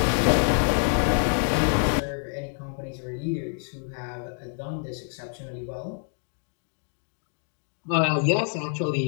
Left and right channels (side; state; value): right; silent; 56 dB below the other